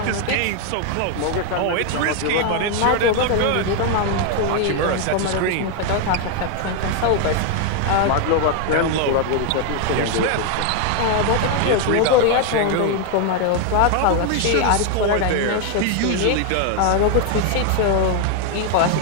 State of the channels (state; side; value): different; both; correlation 0.01